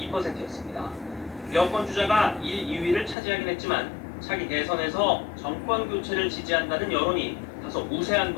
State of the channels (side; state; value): right; drops out; at 3.2 s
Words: 여권 주자가 1, 2위를 차지하긴 했지만 차기 대선에서 정권 교체를 지지한다는 여론이 다소 우세한